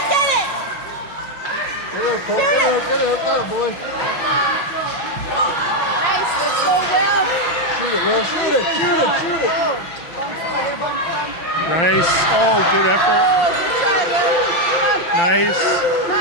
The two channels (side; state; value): right; late; 5.9 ms